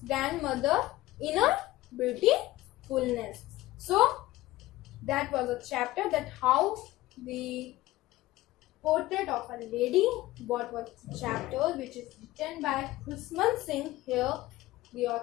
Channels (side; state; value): right; quieter; 17.5 dB